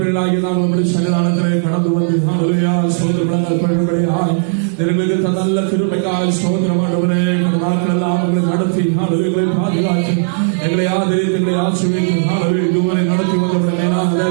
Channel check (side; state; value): left; silent; digital silence